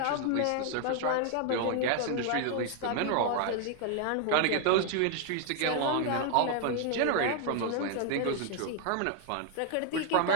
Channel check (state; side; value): different; both; correlation 0.00